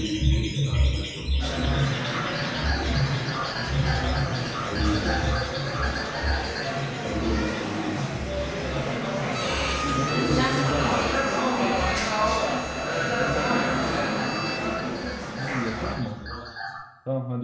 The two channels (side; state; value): both; identical; correlation 1.00